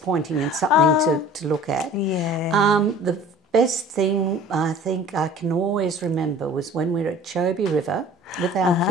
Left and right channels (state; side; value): normal; both; correlation 0.46